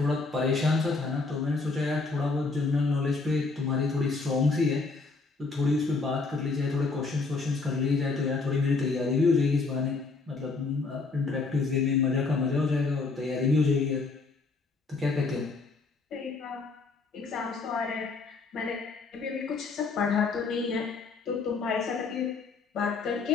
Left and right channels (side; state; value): right; quieter; 4.1 dB